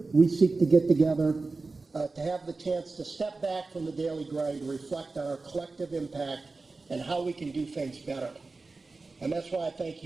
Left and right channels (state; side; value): quieter; left; 3.7 dB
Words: we seek to get together to have the chance to step back from the daily grind to reflect on our collective impact and how we can do things better. And that's why I thank